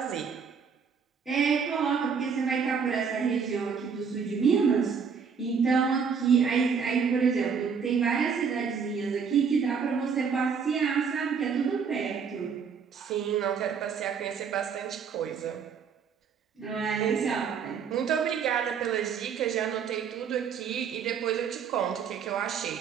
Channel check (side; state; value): left; quieter; 6.3 dB